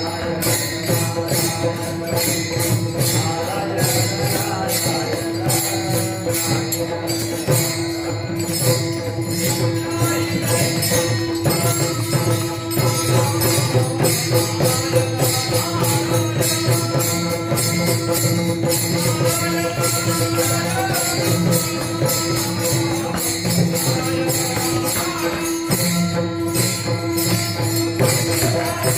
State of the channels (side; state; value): both; identical; correlation 1.00